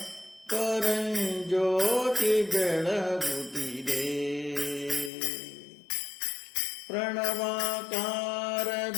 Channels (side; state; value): right; drops out; at 5.1 s